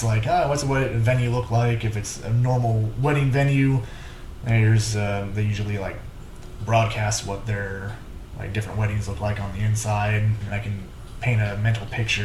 what's a venue look like? If it's a normal wedding venue, there's they usually broadcast what their different weddings look like on the inside, and I can paint a mental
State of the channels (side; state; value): both; identical; correlation 1.00